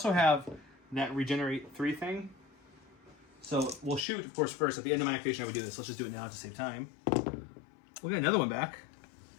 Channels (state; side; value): drops out; right; at 4.0 s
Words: have that regenerate 3 thing. So we'll shoot, of course, first. At the end of my activation, I would do this. Let's just do it now to save time. We'll get another one back.